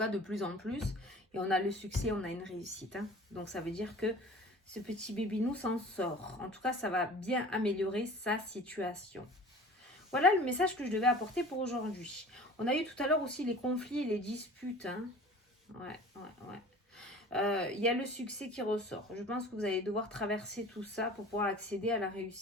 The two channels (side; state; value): both; normal; correlation 0.43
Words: de plus en plus. Et on a le succès, on a une réussite. Hein. Donc, ça veut dire que ce petit bébinou s'en sort. En tout cas, ça va bien améliorer sa situation. Voilà le message que je devais apporter pour aujourd'hui. On a eu tout à l'heure aussi les conflits et les disputes. Hein. Ouais. Il y a le succès qui ressort. Je pense que vous allez devoir traverser tout ça pour pouvoir accéder à la